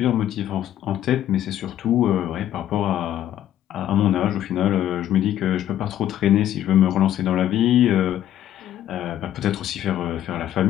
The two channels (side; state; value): right; quieter; 11.6 dB